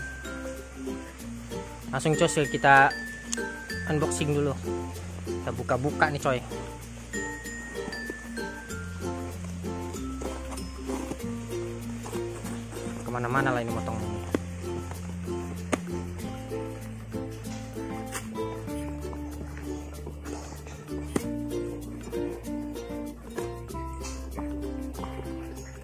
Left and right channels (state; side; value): identical; both; correlation 1.00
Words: Langsung coy, kita unboxing dulu. Kita buka-buka nih coy. Kemana-mana lah ini motong.